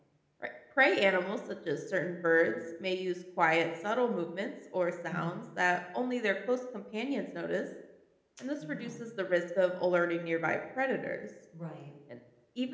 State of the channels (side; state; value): both; identical; correlation 1.00